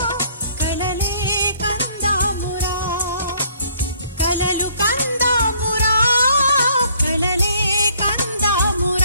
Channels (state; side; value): inverted; both; correlation -0.61